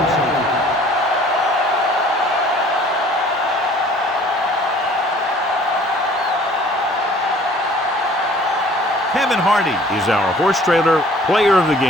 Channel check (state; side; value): normal; both; correlation 0.53